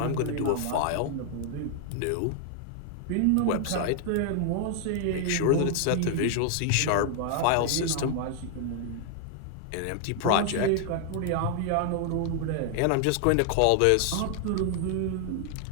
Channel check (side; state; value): both; different; correlation 0.00